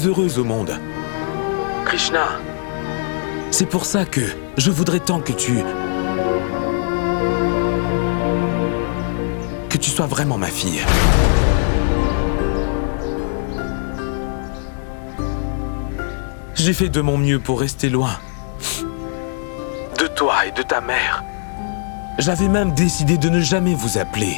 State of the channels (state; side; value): silent; right; digital silence